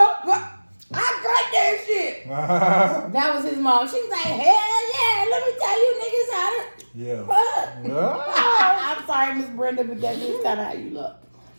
got that shit. That was his mom. She was like, hell yeah, let me tell you niggas how to fuck. I'm sorry, Miss Brenda, but that's just kind of how you look.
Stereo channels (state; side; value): inverted; both; correlation -1.00